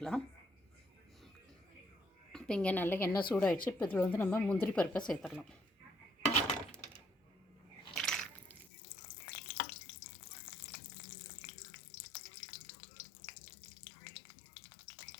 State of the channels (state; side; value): drops out; right; at 8.7 s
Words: இப்போ இங்கே நல்லா எண்ணெய் சூடாகிடுச்சு. இப்போ இதில் வந்து நம்ம முந்திரி பருப்பை சேர்த்துடலாம்.